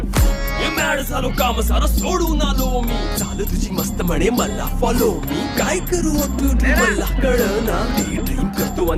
मॅड झालो काम सारं सोडून आलो मी चाल तुझी मस्त म्हणे मला फॉलो मी काय करू ब्युटी मला कळना ड्रीम करतो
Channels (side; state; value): both; identical; correlation 1.00